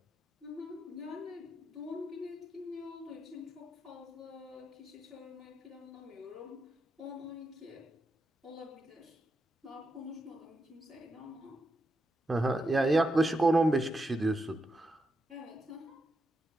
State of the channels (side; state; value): both; normal; correlation 0.85